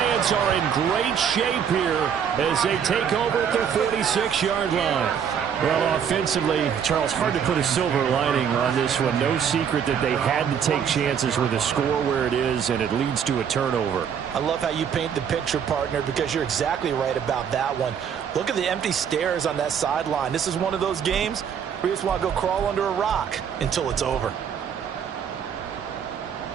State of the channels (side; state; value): left; quieter; 7.9 dB